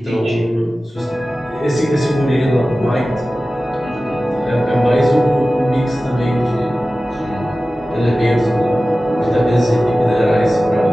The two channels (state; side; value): normal; both; correlation 0.96